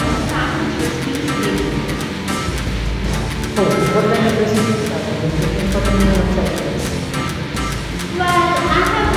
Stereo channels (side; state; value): both; identical; correlation 1.00